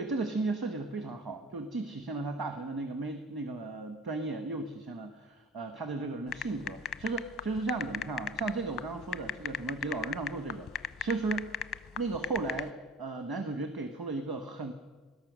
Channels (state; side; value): normal; both; correlation 0.43